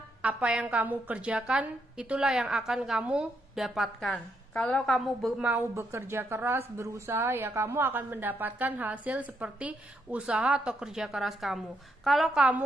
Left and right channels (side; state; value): both; normal; correlation 0.78